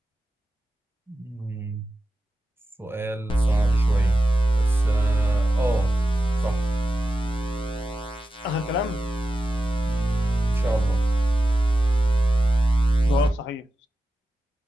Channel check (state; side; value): normal; both; correlation 0.92